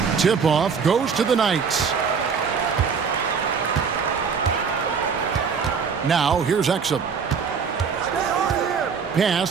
Tip-off goes to the Knights. Now, here's Exum. Pass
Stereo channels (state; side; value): quieter; left; 6.1 dB